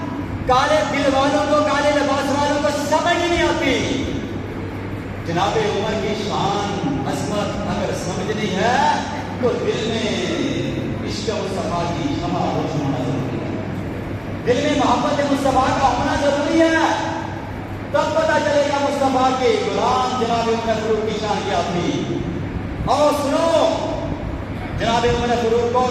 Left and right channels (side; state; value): both; identical; correlation 1.00